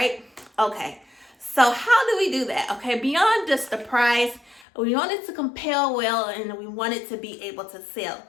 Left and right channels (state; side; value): drops out; right; at 4.7 s